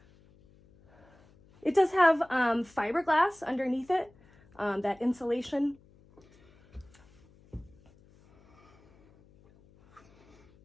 It does have fiberglass underneath it, that insulation.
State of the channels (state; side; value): noise; left; hum, 29 dB below the sound